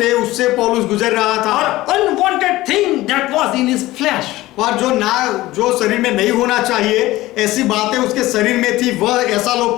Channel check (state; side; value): quieter; right; 17.5 dB